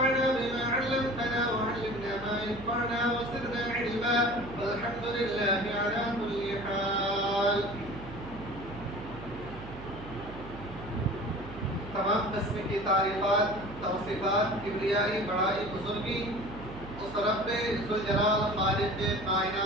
بما علمتنا وعلمنا ما ينفعنا وزدنا علما والحمد لله على كل حال. تمام قسم کی تعریفات توصیفات کبریائی بڑائی بزرگی اس رب ذوالجلال خالق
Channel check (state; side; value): noise; right; hum, 14 dB below the sound